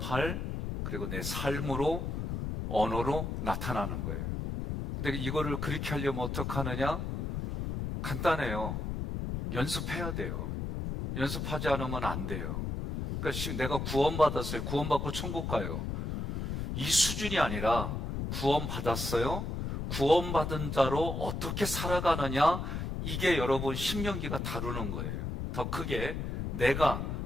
그리고 내 삶으로, 언어로 나타나는 거예요. 근데 이거를 그렇게 하려면 어떻게 하느냐? 간단해요. 연습해야 돼요. 연습하지 않으면 안 돼요. 그러니까 내가 구원받았어요. 구원받고 천국 가요. 이 수준이 아니라 구원받았어요. 구원받은 자로 어떻게 살아가느냐, 이게 여러분 신명기가 다루는 거예요. 더 크게 내가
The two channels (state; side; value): noise; left; rumble, 3 dB below the sound